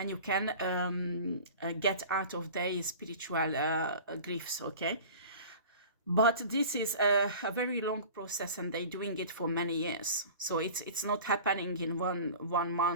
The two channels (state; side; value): inverted; both; correlation -0.40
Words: you can get out of their spiritual griefs, okay? But this is a very long process, and they're doing it for many years. So it's not happening in one